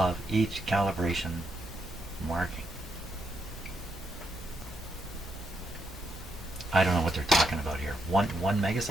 each calibration marking. I don't know what they're talking about here. One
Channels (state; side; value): normal; both; correlation 0.80